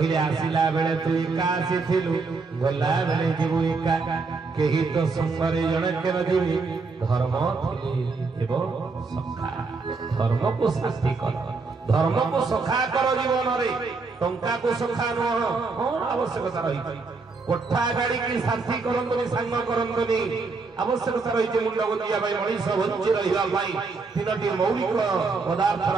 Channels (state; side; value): quieter; left; 4.2 dB